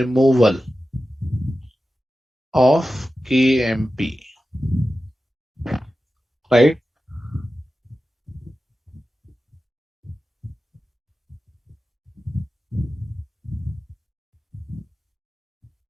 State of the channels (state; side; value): normal; both; correlation 0.93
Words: of KMP, right?